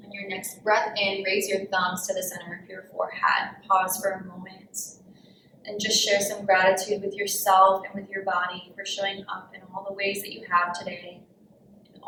On your next breath in, raise your thumbs to the center of your forehead. Pause for a moment and just share some gratitude with yourself and with your body for showing up in all the ways that you have today, in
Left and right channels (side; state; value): both; identical; correlation 1.00